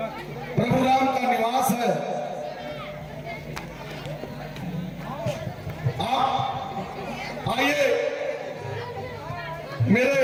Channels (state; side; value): identical; both; correlation 1.00